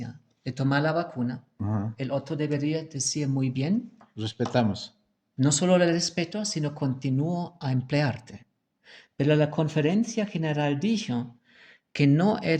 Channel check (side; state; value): both; identical; correlation 1.00